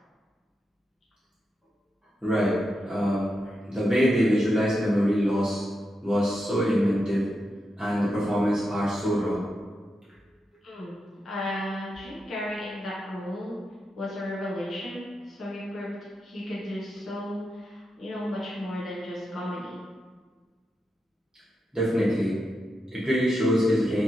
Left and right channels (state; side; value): normal; both; correlation 0.87